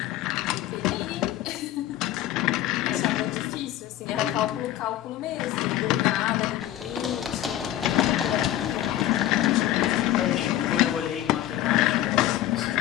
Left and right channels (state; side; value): quieter; right; 13.4 dB